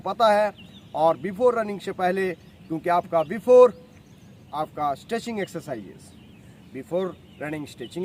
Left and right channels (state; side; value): identical; both; correlation 1.00